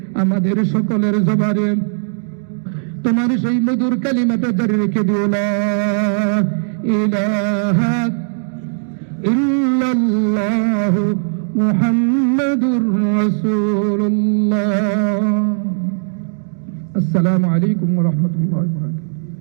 আমাদের সকলের জবানে তোমার সেই মধুর কালিমাটা জারি রেখে দিও, লা ইলাহা ইল্লাল্লাহু মুহাম্মাদুর রাসূলুল্লাহ। আসসালামু আলাইকুম ওয়া রাহমাতুল্লাহি ওয়া বারাকাতুহু।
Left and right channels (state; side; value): silent; left; digital silence